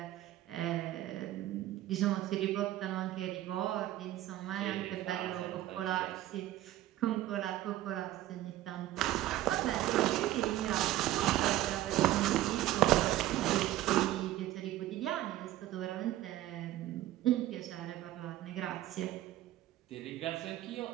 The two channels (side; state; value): left; quieter; 14.5 dB